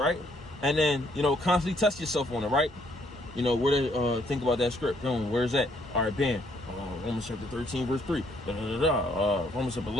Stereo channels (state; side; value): normal; both; correlation 0.69